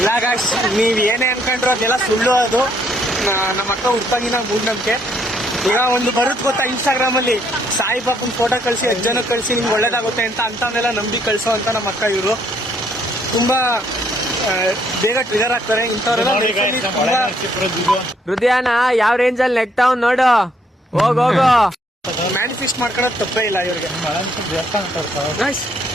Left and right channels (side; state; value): both; normal; correlation 0.69